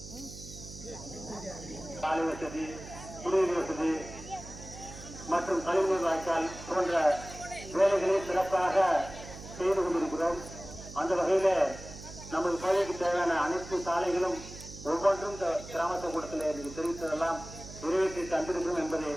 சாலை வசதி, குடிநீர் வசதி மற்றும் கழிவுநீர் வாய்க்கால் போன்ற வேலைகளை சிறப்பாக செய்து கொண்டிருக்கிறோம். அந்த வகையில நமது பகுதிக்கு தேவையான அனைத்து சாலைகளும் ஒவ்வொன்றும் கிராம கூட்டத்தில் எனக்கு தெரிவித்ததெல்லாம் நிறைவேற்றி தந்திருக்கிறோம் என்பதை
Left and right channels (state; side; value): noise; right; hum, 14 dB below the sound